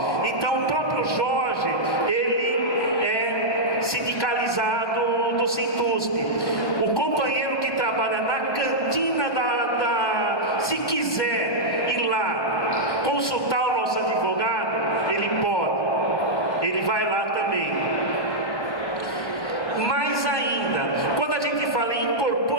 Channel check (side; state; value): right; late; 1.1 ms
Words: Então o próprio Jorge, ele é sindicalizado do Sintusp. O companheiro que trabalha na cantina se quiser ir lá consultar o nosso advogado, ele pode, ele vai lá também. Mais ainda, quando a gente fala em